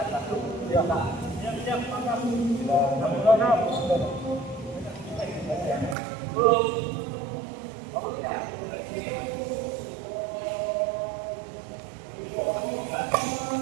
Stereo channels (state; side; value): drops out; left; at 6.0 s